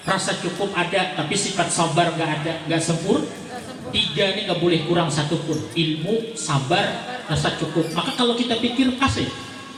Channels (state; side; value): identical; both; correlation 1.00